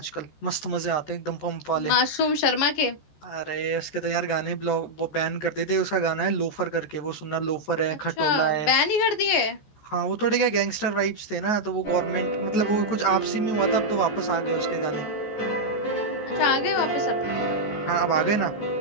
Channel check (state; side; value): late; right; 14 ms